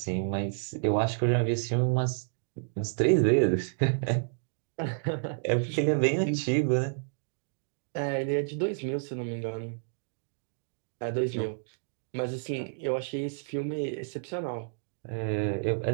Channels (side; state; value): left; silent; digital silence